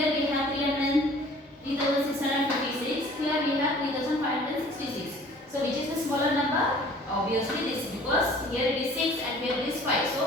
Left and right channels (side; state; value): both; normal; correlation 0.50